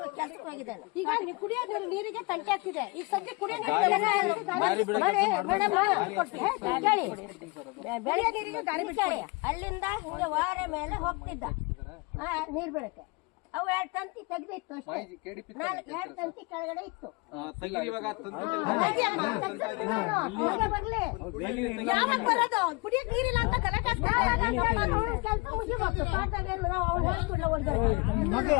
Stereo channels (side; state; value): right; quieter; 26.6 dB